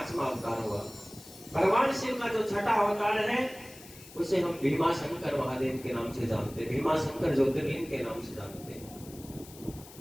अवतार हुआ। भगवान शिव का जो छठा अवतार है उसे हम भीमाशंकर महादेव के नाम से जानते हैं, भीमाशंकर ज्योतिर्लिंग के नाम से जानते हैं।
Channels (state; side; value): noise; left; hiss, 19 dB below the sound